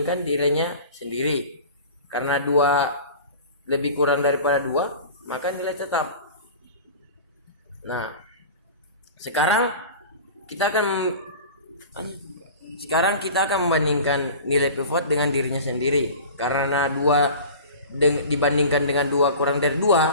dirinya sendiri. Karena 2 lebih kurang daripada 2, maka nilai tetap. Nah, sekarang kita akan membandingkan nilai pivot dengan dirinya sendiri. Karena 2 dibandingkan dengan 2 kurang dari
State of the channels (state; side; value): inverted; both; correlation -0.38